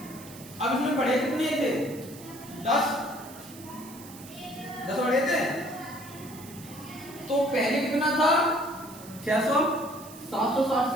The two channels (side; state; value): right; noise; hiss, 18 dB below the sound